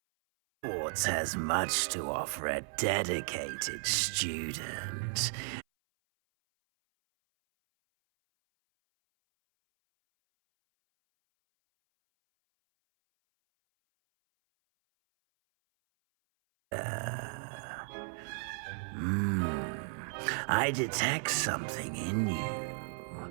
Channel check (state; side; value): silent; left; 55 dB below the other